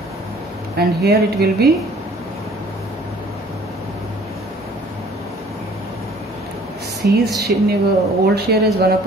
and here it will be C's old share is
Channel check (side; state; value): both; normal; correlation 0.53